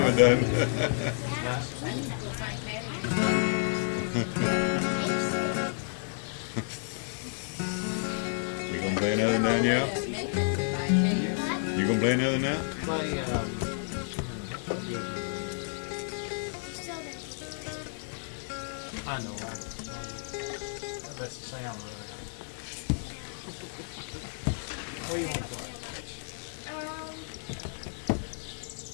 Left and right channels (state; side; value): silent; right; digital silence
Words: done. You gonna play another now, yeah? You gonna play another now? Play, I know, that's the sound right. What do you want to play?